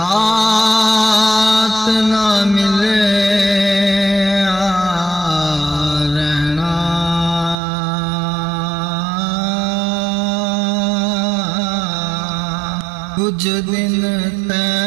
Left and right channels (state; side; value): drops out; left; at 7.6 s